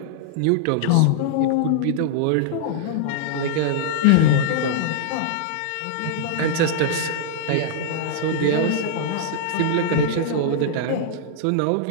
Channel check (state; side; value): different; both; correlation -0.01